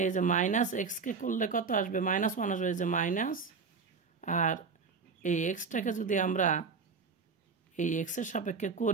এই যে মাইনাস এক্সকে করলে কত আসবে? -1 আসবে। এই যে মাইনাস, আর এই এক্সটাকে যদি আমরা এই এক্সের সাপেক্ষে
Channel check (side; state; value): left; quieter; 5.1 dB